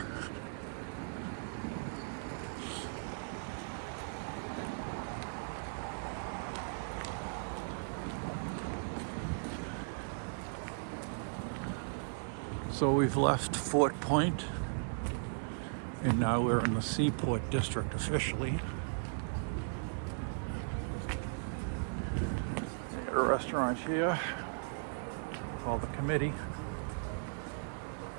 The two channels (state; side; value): silent; left; digital silence